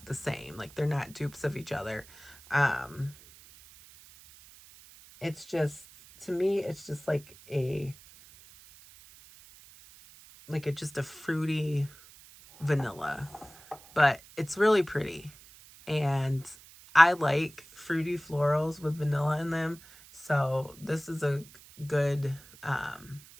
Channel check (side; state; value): right; noise; hiss, 22 dB below the sound